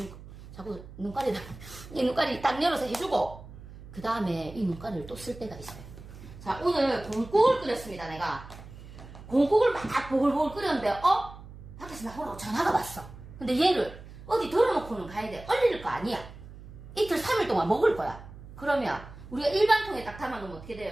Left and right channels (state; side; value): noise; right; hum, 16 dB below the sound